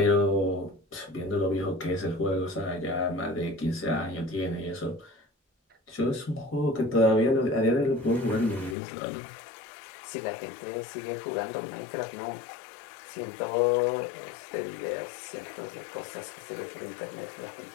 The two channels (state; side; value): drops out; right; at 8.8 s